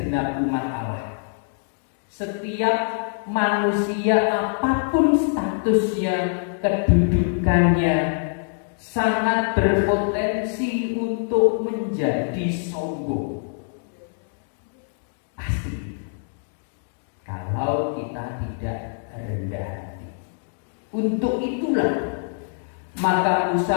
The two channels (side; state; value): right; silent; 62 dB below the other